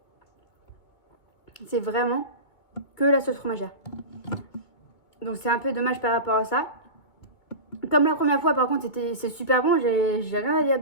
C'est vraiment que la sauce fromagère. Donc, c'est un peu dommage par rapport à ça. Comme la première fois, par contre, c'est super bon. J'ai rien à dire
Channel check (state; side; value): late; right; 2.2 ms